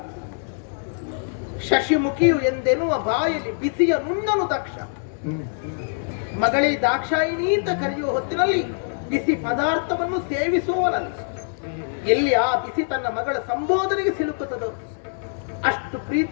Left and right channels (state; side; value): silent; right; digital silence